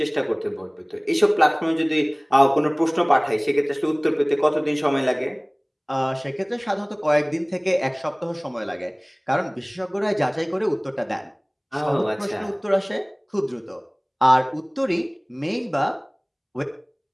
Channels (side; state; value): both; identical; correlation 1.00